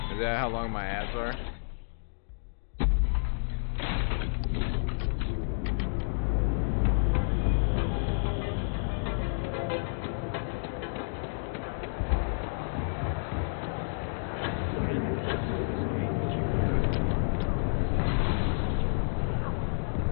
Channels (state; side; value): silent; right; digital silence